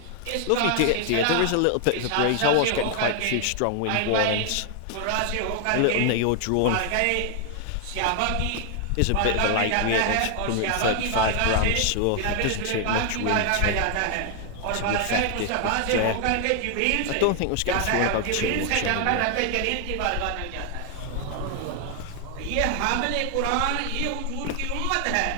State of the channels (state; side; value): different; both; correlation 0.00